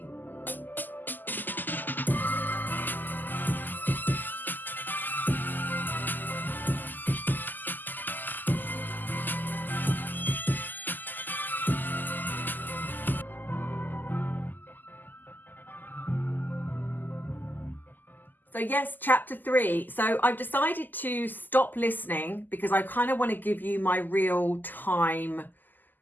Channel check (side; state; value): right; late; 0.087 ms